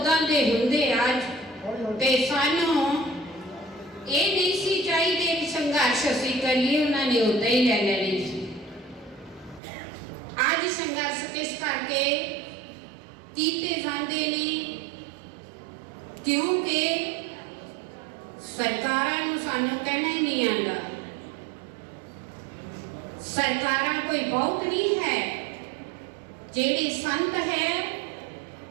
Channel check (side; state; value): left; drops out; at 9.6 s